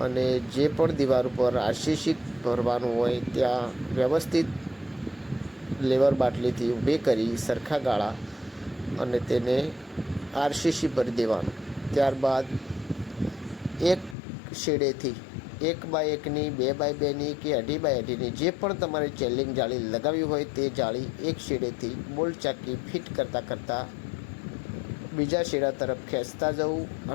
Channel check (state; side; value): drops out; right; at 14.2 s